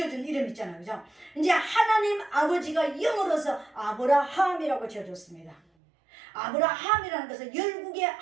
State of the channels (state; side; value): drops out; left; at 5.6 s